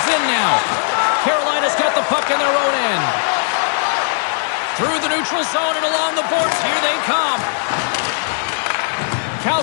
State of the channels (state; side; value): silent; right; digital silence